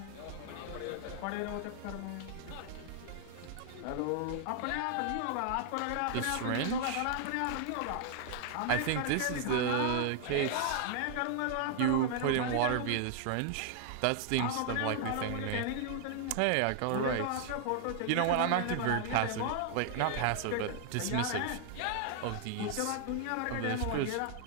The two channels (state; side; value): different; both; correlation 0.00